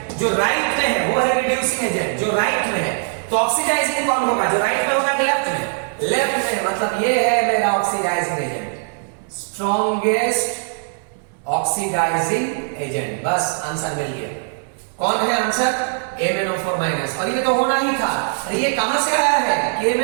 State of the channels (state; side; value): silent; left; digital silence